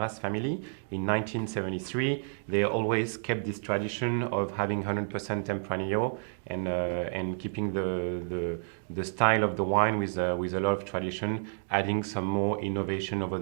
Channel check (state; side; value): silent; left; digital silence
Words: family in 1973, they always kept this tradition of having 100% Tempranillo and keeping the style of the wine with a lot of tradition, adding some more innovation over